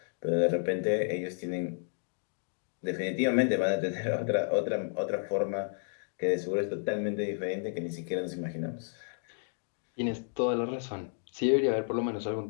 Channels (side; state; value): right; silent; 57 dB below the other